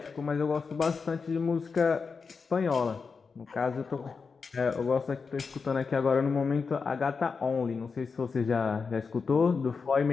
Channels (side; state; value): right; quieter; 5.1 dB